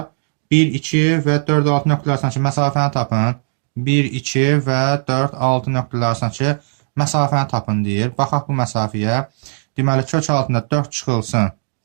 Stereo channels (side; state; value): left; silent; digital silence